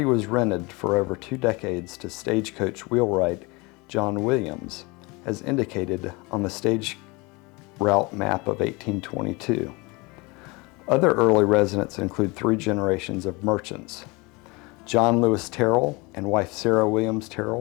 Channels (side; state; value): right; quieter; 26.1 dB